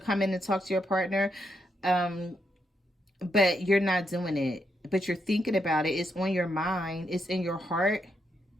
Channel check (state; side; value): normal; both; correlation 0.80